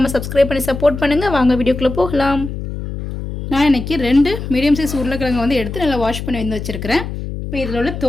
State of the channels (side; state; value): left; noise; hum, 7 dB below the sound